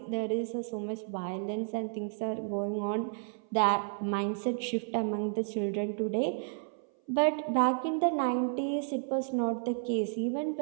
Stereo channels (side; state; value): left; silent; 57 dB below the other